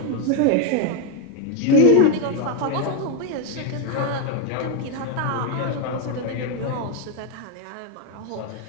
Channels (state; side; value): different; both; correlation 0.01